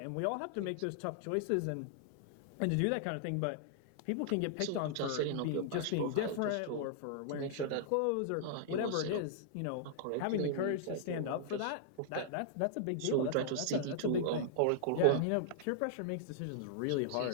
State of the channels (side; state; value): both; different; correlation -0.01